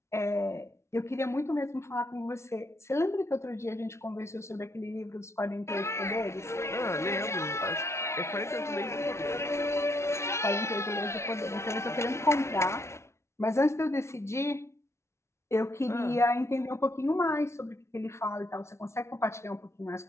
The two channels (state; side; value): late; right; 0.13 ms